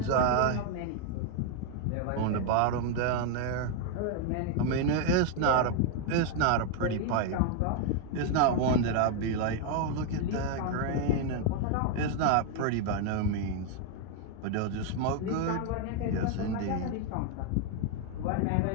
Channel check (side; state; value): both; different; correlation 0.01